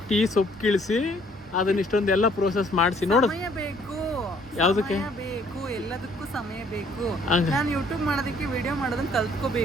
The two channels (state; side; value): normal; both; correlation 0.62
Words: ಟೀ ಸೊಪ್ಪು ಕೀಳಿಸಿ ಅದನ್ನ ಇಷ್ಟೊಂದೆಲ್ಲ ಪ್ರೋಸೆಸ್ ಮಾಡಿಸಿ ನೋಡು. ಸಮಯ ಬೇಕು, ಯಾವುದಕ್ಕೆ ಬೇಕು, ಎಲ್ಲದಕ್ಕೂ ಸಮಯ ಬೇಕು. ನಾನು ಯೂಟ್ಯೂಬ್ ಮಾಡೋದಕ್ಕೆ ವಿಡಿಯೋ ಮಾಡೋದನ್ನ